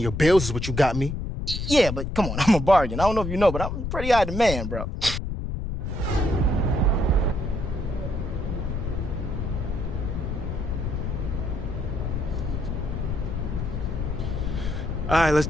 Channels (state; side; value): noise; left; rumble, 3 dB below the sound